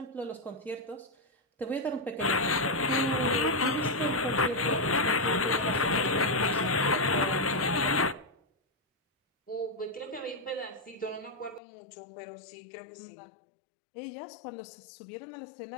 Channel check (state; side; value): drops out; right; at 11.6 s